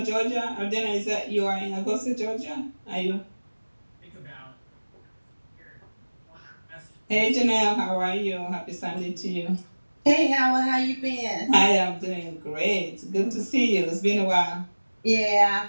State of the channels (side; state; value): both; inverted; correlation -1.00